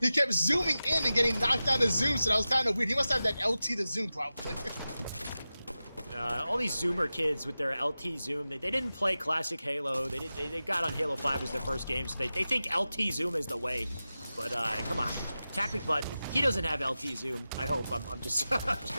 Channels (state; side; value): inverted; both; correlation -0.94